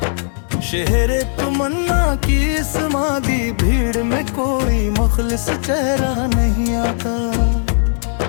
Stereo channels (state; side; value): silent; right; digital silence